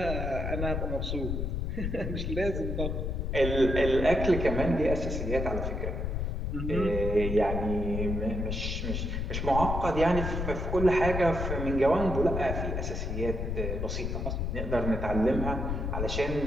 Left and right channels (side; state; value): left; noise; rumble, 2 dB below the sound